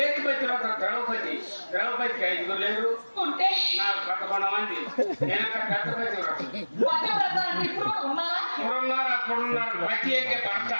పతివ్రత ద్రౌపది. ద్రౌపదికి 5 లేరు ఉంటే నాకు 11 మంది. నేను పెద్ద పతివ్రత. ఇప్పుడు అప్పుడున్నారు. పతి అంటే భర్త.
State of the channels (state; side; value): inverted; both; correlation -1.00